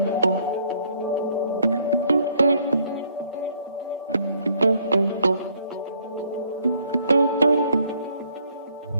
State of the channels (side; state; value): both; inverted; correlation -0.65